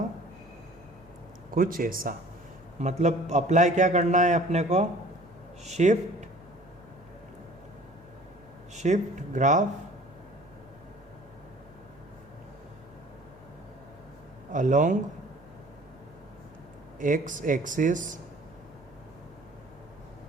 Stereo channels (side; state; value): right; noise; hum, 28 dB below the sound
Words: कुछ ऐसा। मतलब अप्लाई क्या करना है अपने को, shift graph along x axis